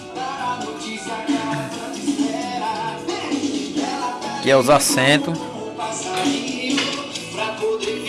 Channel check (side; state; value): both; identical; correlation 1.00